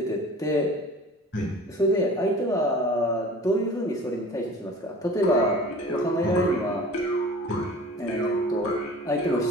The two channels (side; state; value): both; normal; correlation 0.43